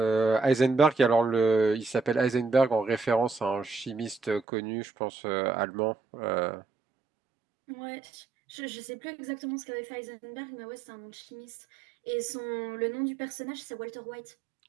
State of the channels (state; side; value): drops out; left; at 4.5 s